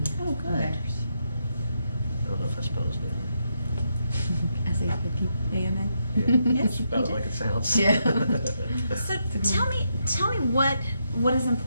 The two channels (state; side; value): inverted; both; correlation -0.81